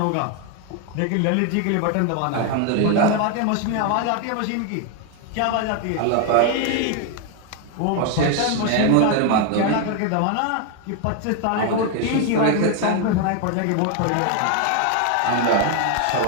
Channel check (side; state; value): both; different; correlation 0.01